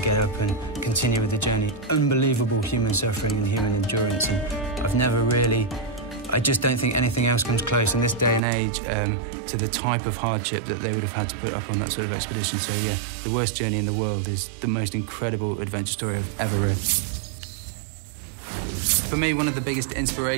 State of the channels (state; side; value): drops out; left; at 8.4 s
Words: get up and continue with the journey. Unbelievable human suffering and human endurance, and I just don't think anything else comes close in this day and age to the type of hardship that they would have had to put up on that sort of expedition. So yeah, The Worst Journey in the World is the most incredible adventure story I've ever read. For me, one of the biggest